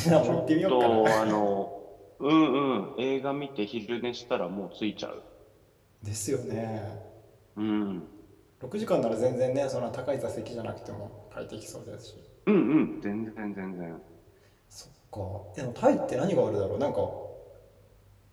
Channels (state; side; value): identical; both; correlation 1.00